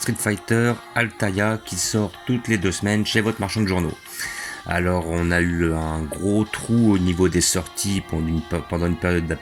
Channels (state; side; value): identical; both; correlation 1.00